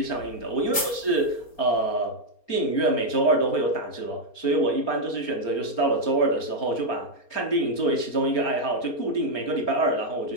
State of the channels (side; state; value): right; late; 4.3 ms